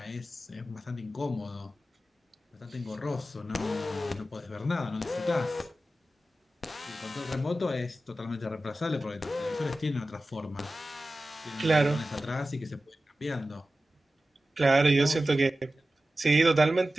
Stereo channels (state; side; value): normal; both; correlation 0.94